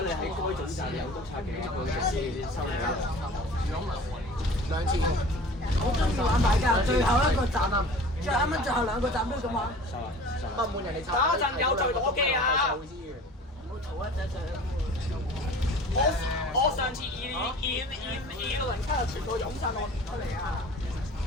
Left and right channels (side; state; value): both; normal; correlation 0.43